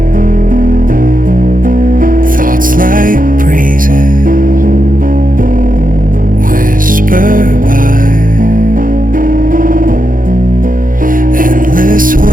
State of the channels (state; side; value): late; left; 0.40 ms